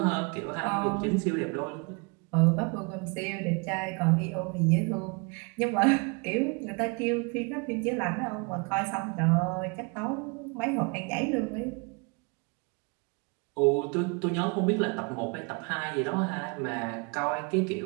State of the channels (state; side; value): quieter; left; 32.1 dB